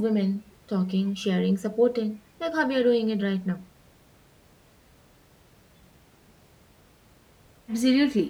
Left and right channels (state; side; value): identical; both; correlation 1.00